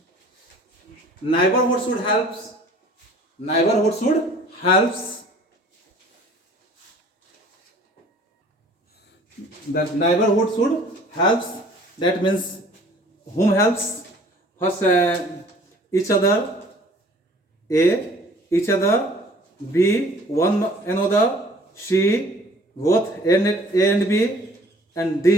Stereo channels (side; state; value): both; normal; correlation 0.52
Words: Neighborhood should helps. That neighborhood should helps, that means whom helps? First each other, A, each other, B, one another, C, both A and B, and